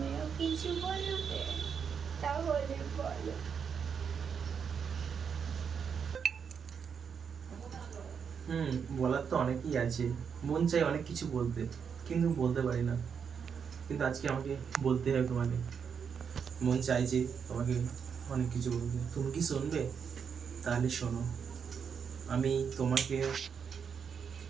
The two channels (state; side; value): quieter; left; 6.8 dB